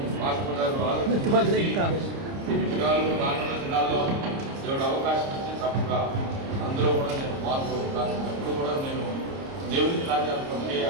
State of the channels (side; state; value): left; late; 30 ms